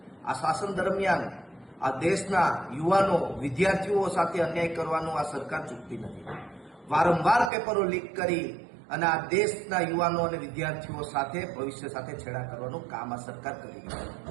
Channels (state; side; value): drops out; left; at 7.5 s